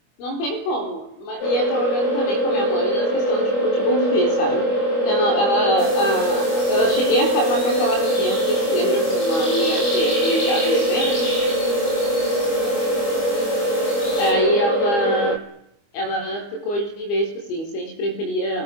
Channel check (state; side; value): late; right; 25 ms